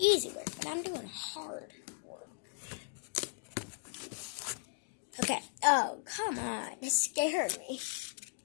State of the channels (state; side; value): silent; right; digital silence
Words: work, but I'm doing hard work. Okay. Oh, come on. It scared me.